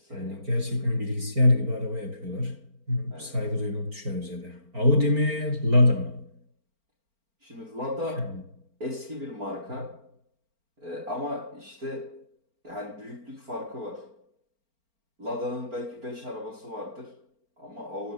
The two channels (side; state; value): left; late; 4.4 ms